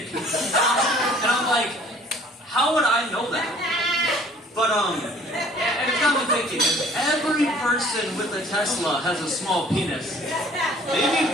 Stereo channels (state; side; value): normal; both; correlation 0.53